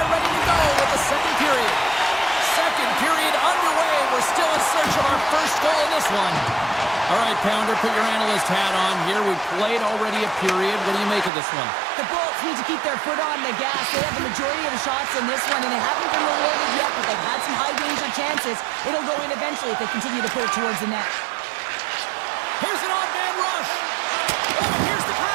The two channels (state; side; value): drops out; left; at 11.3 s